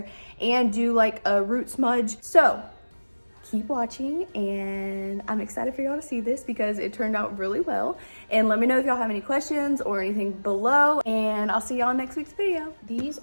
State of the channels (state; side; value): inverted; both; correlation -1.00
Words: and do like a root smudge. So keep watching, and I'm excited for y'all to see this because it turned out really well. And let me know if y'all have any questions or anything below, and I'll see y'all in next week's video. These